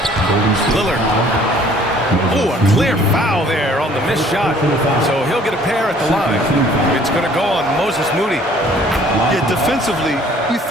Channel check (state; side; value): normal; both; correlation 0.56